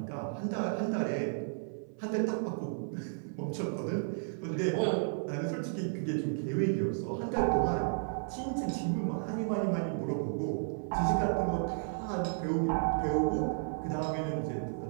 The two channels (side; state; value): left; silent; 56 dB below the other